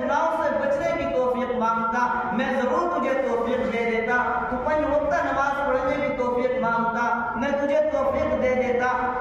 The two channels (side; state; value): both; identical; correlation 1.00